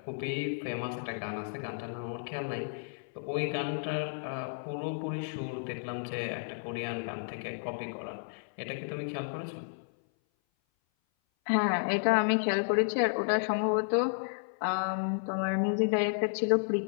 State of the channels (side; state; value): right; silent; 56 dB below the other